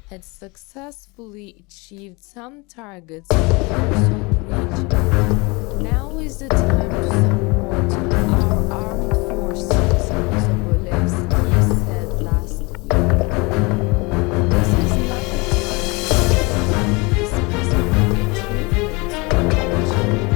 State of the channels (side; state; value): right; quieter; 26.7 dB